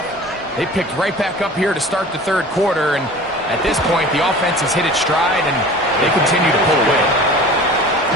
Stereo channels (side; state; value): both; normal; correlation 0.41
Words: they picked right back up here to start the third quarter, and at this point, the offense has hit its stride, and they continue to pull away.